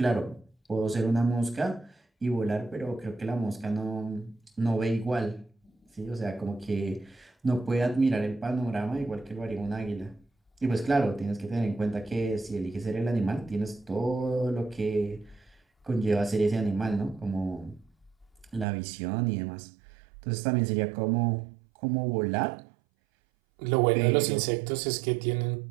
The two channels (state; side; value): drops out; left; at 18.7 s